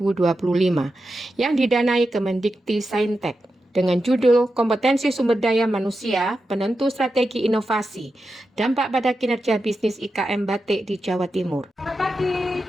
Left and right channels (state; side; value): normal; both; correlation 0.89